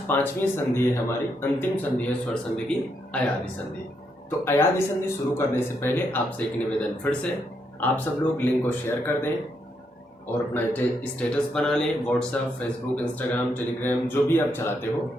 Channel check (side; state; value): both; normal; correlation 0.78